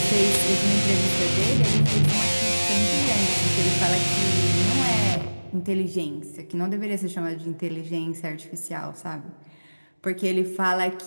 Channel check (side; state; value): both; inverted; correlation -1.00